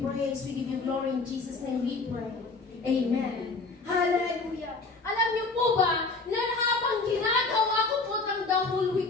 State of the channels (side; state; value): right; quieter; 3.8 dB